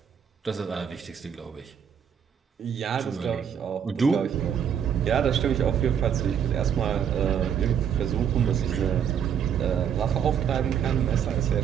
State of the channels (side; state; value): left; quieter; 8.3 dB